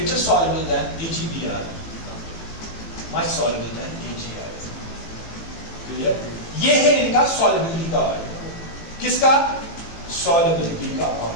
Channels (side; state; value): right; late; 18 ms